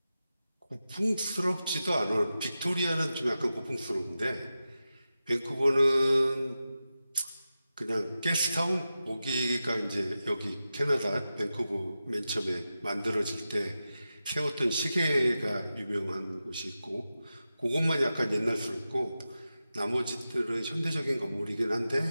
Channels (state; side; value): inverted; both; correlation -0.92